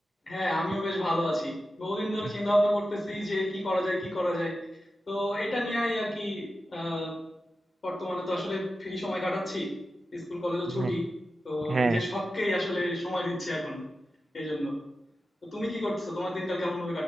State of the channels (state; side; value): normal; both; correlation 0.92